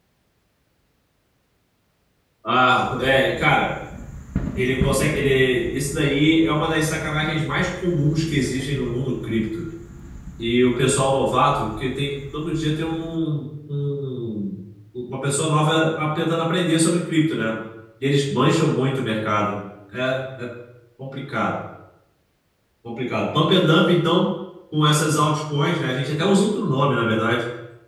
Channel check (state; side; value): identical; both; correlation 1.00